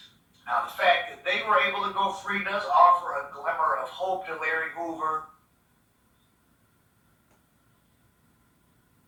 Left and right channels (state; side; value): identical; both; correlation 1.00